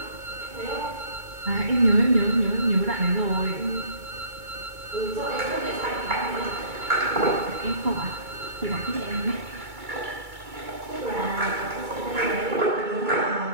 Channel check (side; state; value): left; late; 2.3 ms